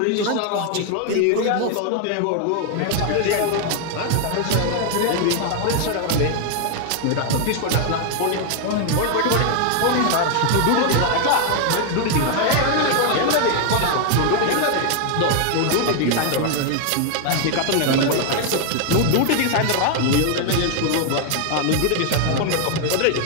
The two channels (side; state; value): both; different; correlation 0.00